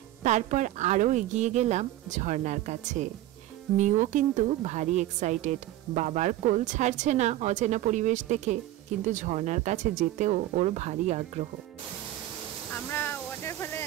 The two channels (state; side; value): quieter; left; 14.6 dB